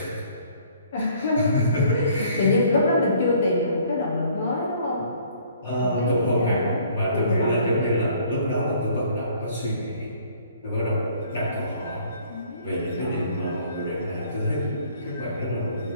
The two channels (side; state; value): both; inverted; correlation -0.58